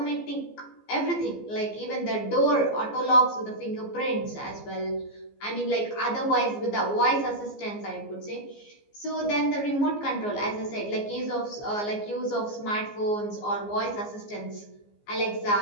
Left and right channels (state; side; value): late; right; 14 ms